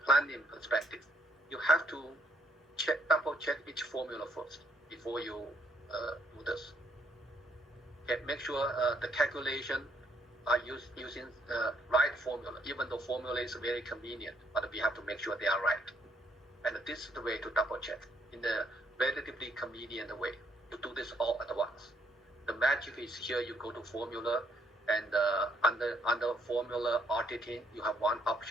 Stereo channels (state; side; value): normal; both; correlation 0.70